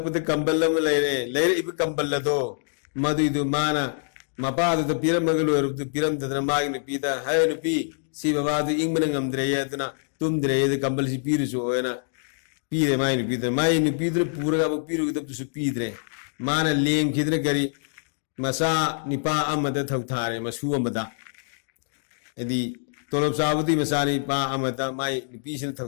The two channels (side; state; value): right; silent; digital silence